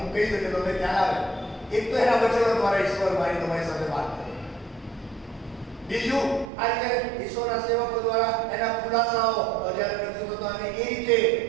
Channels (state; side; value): drops out; left; at 6.5 s